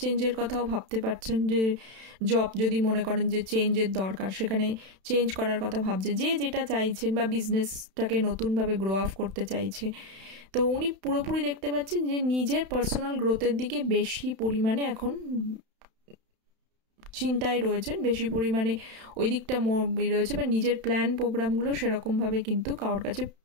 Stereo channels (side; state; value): left; late; 31 ms